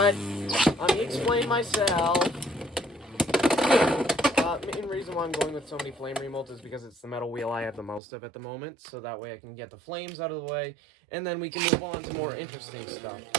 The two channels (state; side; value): drops out; left; at 8.0 s